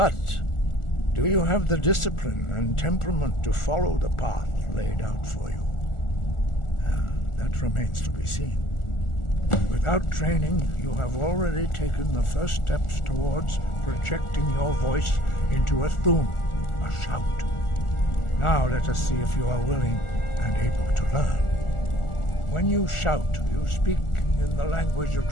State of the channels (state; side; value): late; right; 1.4 ms